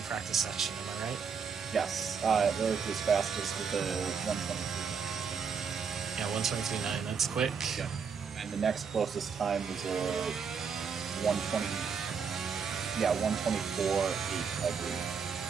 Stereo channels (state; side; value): quieter; left; 6.1 dB